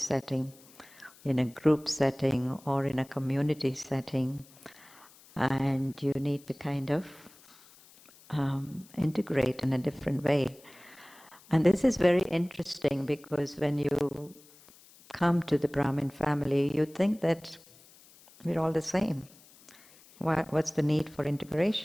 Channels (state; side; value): noise; left; hiss, 25 dB below the sound